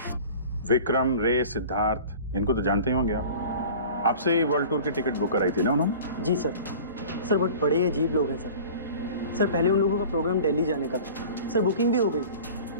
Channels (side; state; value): both; inverted; correlation -0.41